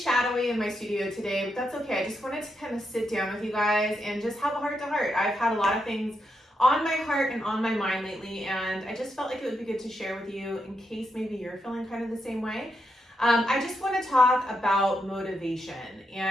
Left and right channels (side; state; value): both; normal; correlation 0.83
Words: in my studio today, but that's okay. I just wanted to kind of sit down with you guys and just have a heart-to-heart. I've had a lot of things on my heart and on my mind lately, and I just felt like it would be good to share with you in case maybe you're feeling kind of the same way. I just want to talk about motivation,